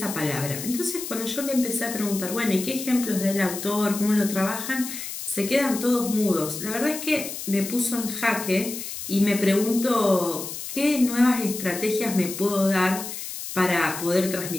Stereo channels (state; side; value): noise; left; hiss, 8 dB below the sound